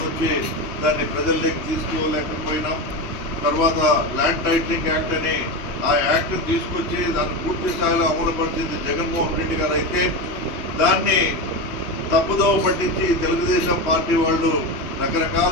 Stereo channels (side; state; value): right; late; 3.1 ms